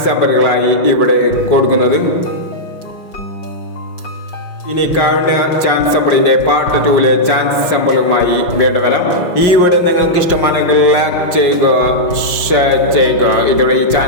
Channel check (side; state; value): right; late; 5.5 ms